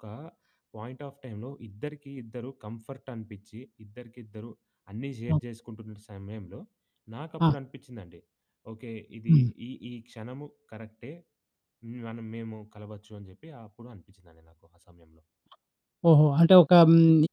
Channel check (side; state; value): both; identical; correlation 1.00